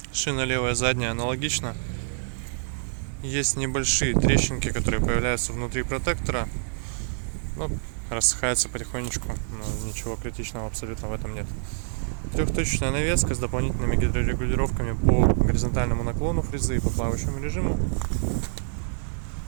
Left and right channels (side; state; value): left; silent; digital silence